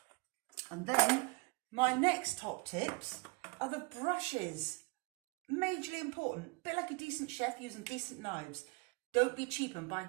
And then my next top tips are the brushes. Majorly important, a bit like a decent chef using decent knives. Don't be cheap and buy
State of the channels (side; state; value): left; quieter; 28.3 dB